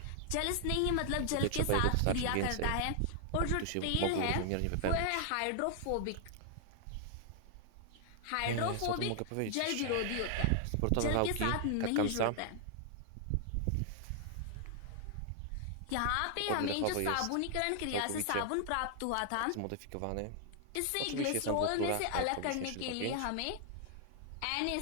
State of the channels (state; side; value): different; both; correlation 0.00